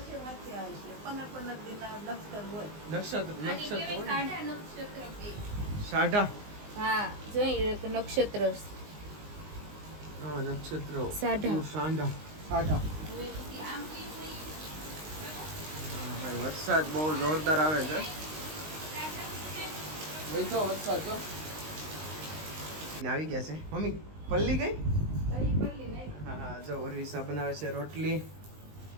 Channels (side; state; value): left; late; 19 ms